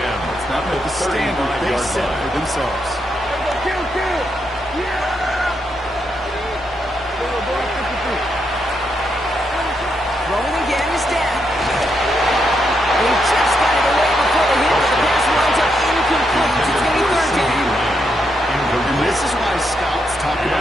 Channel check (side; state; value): left; noise; hum, 23 dB below the sound